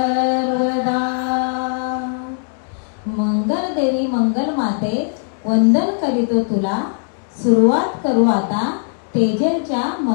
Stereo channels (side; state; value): right; silent; 67 dB below the other